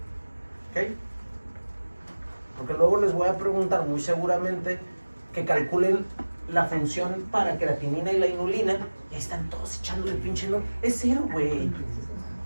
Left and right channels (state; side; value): inverted; both; correlation -1.00